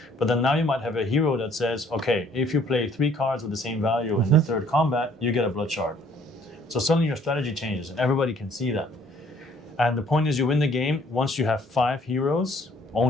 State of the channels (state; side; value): normal; both; correlation 0.60